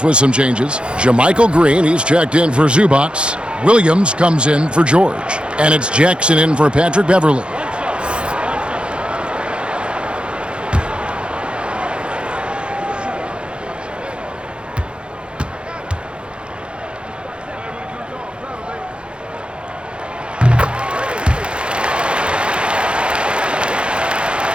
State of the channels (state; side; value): late; left; 0.055 ms